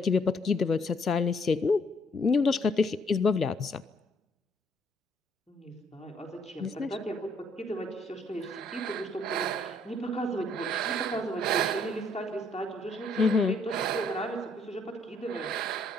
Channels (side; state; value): both; normal; correlation 0.67